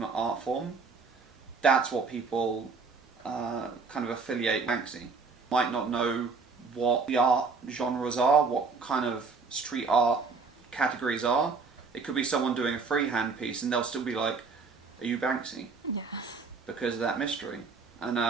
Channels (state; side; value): quieter; left; 4.6 dB